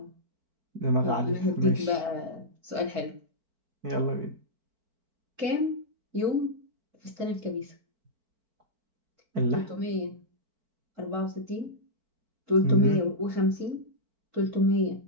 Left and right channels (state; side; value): late; left; 4.5 ms